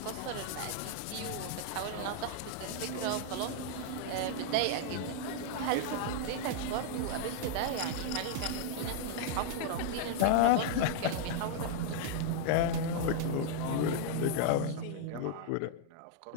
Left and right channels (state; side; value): different; both; correlation 0.00